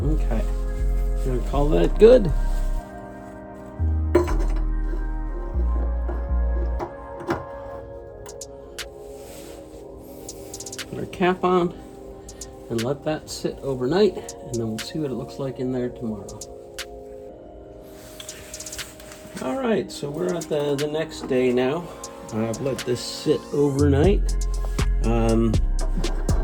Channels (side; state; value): both; identical; correlation 1.00